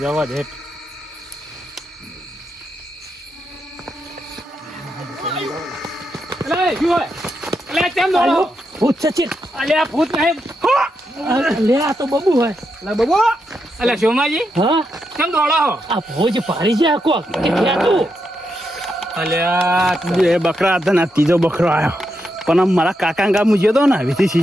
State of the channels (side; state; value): both; normal; correlation 0.83